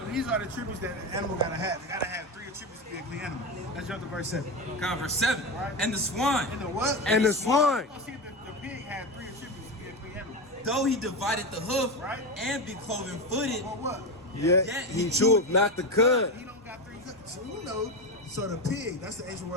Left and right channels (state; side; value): normal; both; correlation 0.17